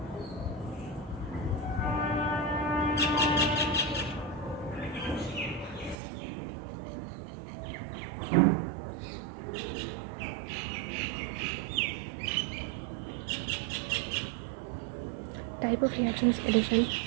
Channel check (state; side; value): drops out; left; at 6.0 s